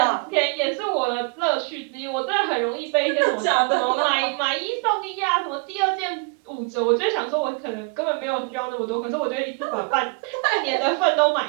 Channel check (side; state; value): left; quieter; 34.1 dB